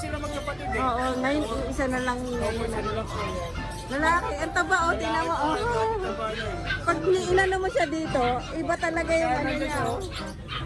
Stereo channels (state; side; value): identical; both; correlation 1.00